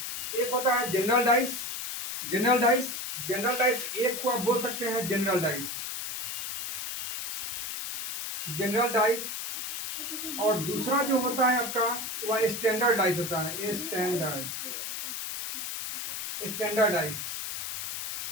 एक होता है जनरल डाइस। जनरल डाइस एक को आप बोल सकते हैं जनरल डाइस, और दूसरा जो होता है आपका वह स्टैंडर्ड डाइस होता है। स्टैंडर्ड डाइस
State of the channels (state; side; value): noise; left; hiss, 4 dB below the sound